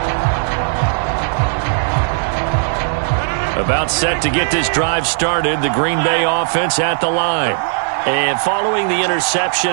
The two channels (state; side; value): silent; left; 68 dB below the other